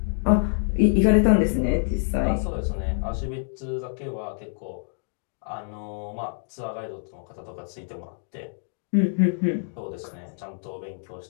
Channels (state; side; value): silent; right; digital silence